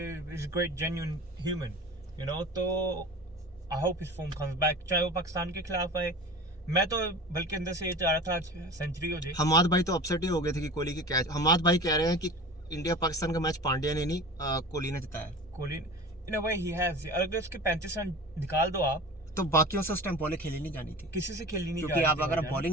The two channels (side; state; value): both; normal; correlation 0.37